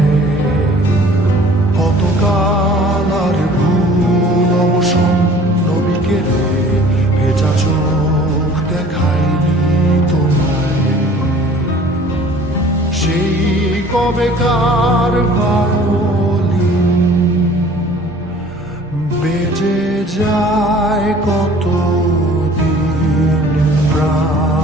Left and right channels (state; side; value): normal; both; correlation 0.50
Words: কতকাল আর ভুল অবসন্ন বিকেলে ভেজা চোখ দেখায়নি তোমায়। সেই কবেকার ভায়োলিন বেজে যায় কত দিন